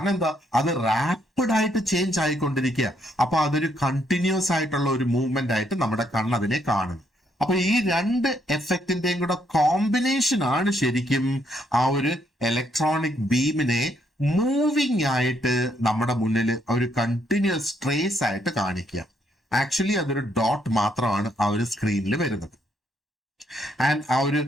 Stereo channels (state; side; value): normal; both; correlation 0.73